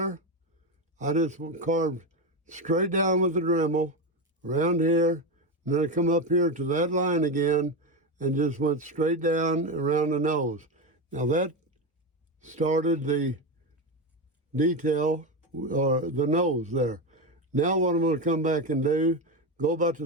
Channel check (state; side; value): normal; both; correlation 0.14